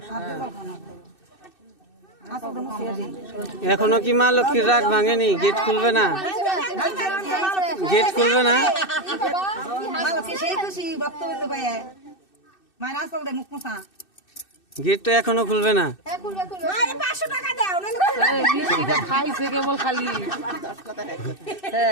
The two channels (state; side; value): late; right; 2.6 ms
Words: হাত দিয়ে খাওয়া এখনো কি মা লক্ষ্মীর রাগ ভাঙেনি? গেট খুলবে না? গেট খুলবে না? সেই খুশি বক্তব্য পাই মায়ের আসল দে মুখ মুসা গেট তো এখনো খুলবে না। খাইছে কেবল খালি